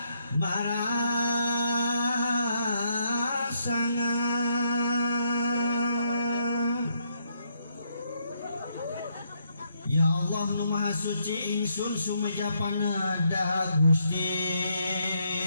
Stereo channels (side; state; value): both; inverted; correlation -0.75